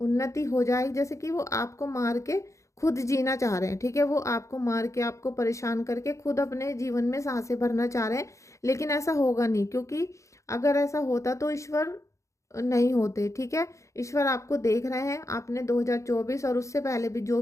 हो जाए, जैसे कि वो आपको मार के खुद जीना चाह रहे हैं, ठीक है। वो आपको मार के, आपको परेशान करके खुद अपने जीवन में सांसें भरना चाह रहे हैं, लेकिन ऐसा होगा नहीं, क्योंकि अगर ऐसा होता तो ईश्वर नहीं होते, ठीक है। ईश्वर आपको देख रहे हैं, आपने 2024 और उससे पहले भी जो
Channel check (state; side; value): late; right; 0.15 ms